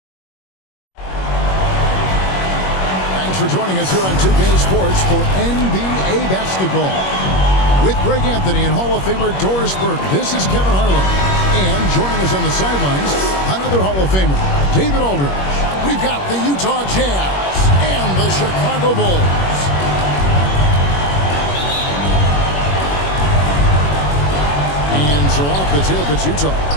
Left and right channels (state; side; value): late; right; 21 ms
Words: Thanks for joining us here on 2K Sports for NBA basketball. With Greg Anthony and Hall of Famer Doris Burke, this is Kevin Harlan. And joining us on the sidelines, another Hall of Famer, David Aldridge. We've got the Utah Jazz and the Chicago Bulls. And so off the tip, it's Utah.